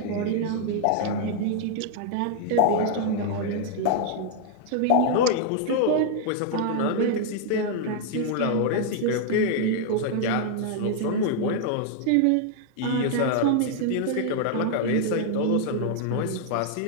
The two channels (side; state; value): both; different; correlation 0.00